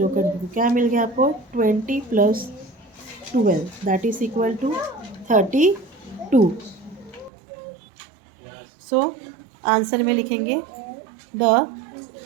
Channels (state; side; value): drops out; left; at 7.3 s